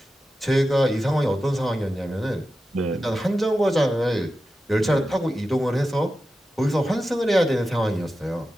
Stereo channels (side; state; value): both; normal; correlation 0.92